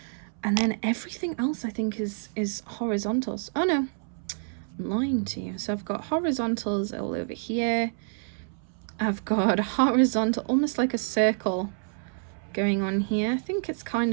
and then everything else I think is horizontals. Oh no, I'm lying to you. So I've got horizontals all over here. I've got a horizontal, almost like a circle going on here. I think it's kind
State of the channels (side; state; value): left; silent; 60 dB below the other